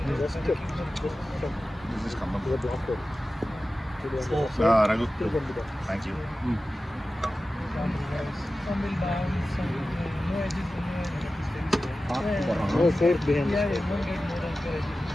Just come up. He was blocked out. Raghu. Thank you. No safe behind.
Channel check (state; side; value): normal; both; correlation 0.95